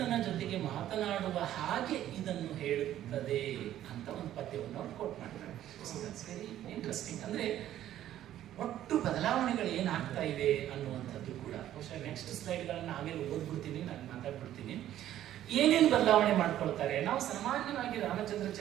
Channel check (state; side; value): quieter; left; 12.3 dB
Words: ಜೊತೆಗೆ ಮಾತನಾಡುವ ಹಾಗೆ ಇದನ್ನು ಹೇಳುತ್ತದೆ ಅಂತ ಒಂದು ಪದ್ಯವನ್ನು ಅವ್ರು ಕೋಟ್ ಮಾಡ್ತಾರೆ. So that's very interesting. ಅಂದರೆ ಒಟ್ಟು ಬದಲಾವಣೆಗಳು ಏನಾಗ್ತಾ ಇದೆ ಅನ್ನುವಂಥದ್ದು ಕೂಡ ಬಹುಶಃ ನೆಕ್ಸ್ಟ್ ಸ್ಲೈಡ್ಗಳನ್ನು ಆಮೇಲೆ ಓದ್ಬಿಡ್ತೀನಿ, ನಾನು ಮಾತಾಡ್ಬಿಡ್ತೀನಿ. ಏನೇನು ಬದಲಾವಣೆ ಮಾಡ್ಕೊಳ್ತಾರೆ. ನಾವು ಸಾಮಾನ್ಯವಾಗಿ ರಾಮಚಂದ್ರ